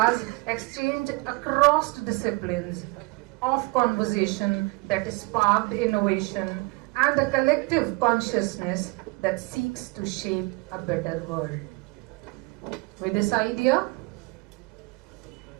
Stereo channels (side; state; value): left; quieter; 25.9 dB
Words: exchanged across disciplines, of conversation that sparked innovation, and a collective consciousness that seeks to shape a better world. With this idea,